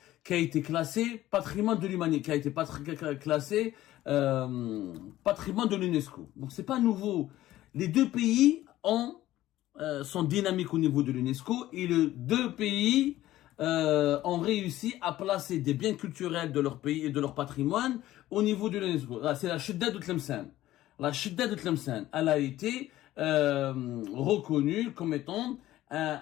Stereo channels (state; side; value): quieter; right; 14.8 dB